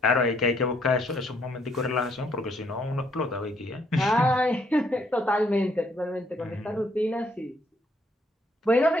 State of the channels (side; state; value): both; normal; correlation 0.69